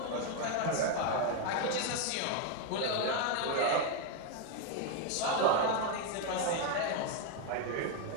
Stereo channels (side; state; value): both; different; correlation 0.01